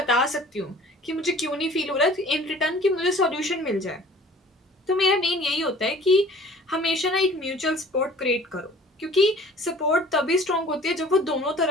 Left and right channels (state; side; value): normal; both; correlation 0.49